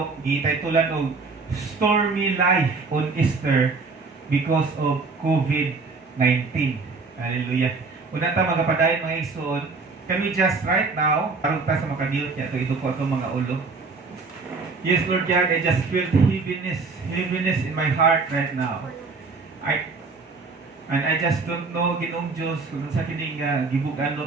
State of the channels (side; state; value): left; quieter; 4.2 dB